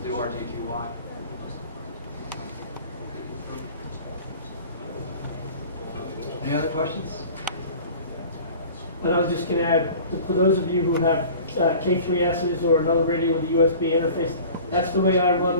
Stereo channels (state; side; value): inverted; both; correlation -0.42